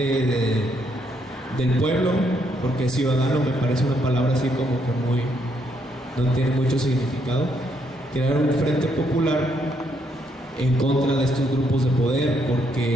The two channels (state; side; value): normal; both; correlation 0.74